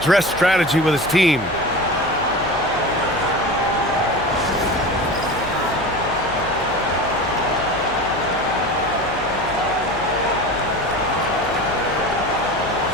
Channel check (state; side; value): noise; left; hum, 17 dB below the sound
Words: strategy with his team.